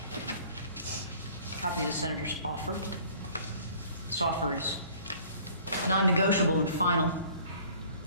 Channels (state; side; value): inverted; both; correlation -0.52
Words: Copy of the senator's offer. This offer is non-negotiable and final.